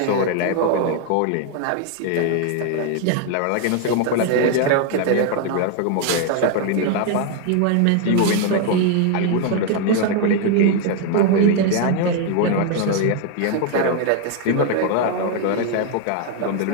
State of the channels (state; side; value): different; both; correlation 0.00